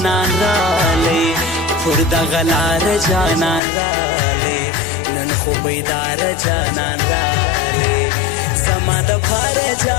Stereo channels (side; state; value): right; drops out; at 3.6 s